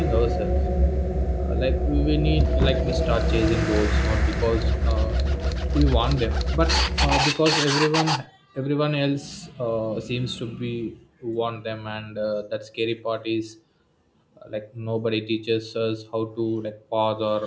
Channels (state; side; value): identical; both; correlation 1.00